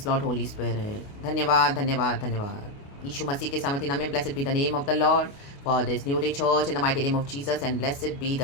Lord Holy Spirit. धन्यवाद धन्यवाद धन्यवाद यीशु मसीह के सामर्थ्य नाम में blessed be the name of the Lord for this new day church in the mighty name of Jesus and blessed be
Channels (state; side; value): late; right; 29 ms